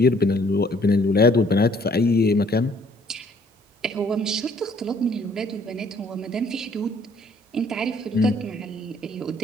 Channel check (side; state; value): both; normal; correlation 0.61